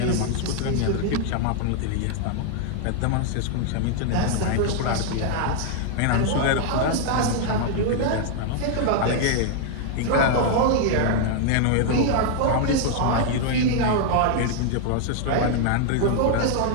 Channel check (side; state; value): both; different; correlation 0.00